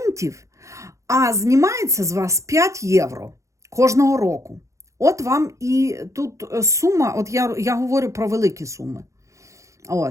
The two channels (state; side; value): late; left; 0.15 ms